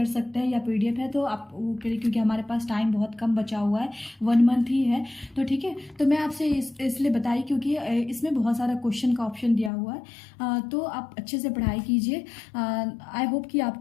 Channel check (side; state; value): right; drops out; at 9.7 s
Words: सकते हैं, या PDF है तो आप वो करें, क्योंकि हमारे पास टाइम बहुत कम बचा हुआ है, 1 मंथ ही है। तो ठीक है, तो मैं आपसे इसलिए बताई क्योंकि इसमें बहुत सारा क्वेश्चन का ऑप्शन दिया हुआ है। तो आप अच्छे से पढ़ाई कीजिए। आई होप कि